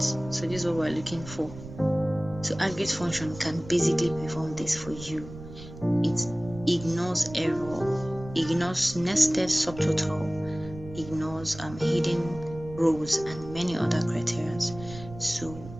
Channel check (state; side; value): noise; right; rumble, 14 dB below the sound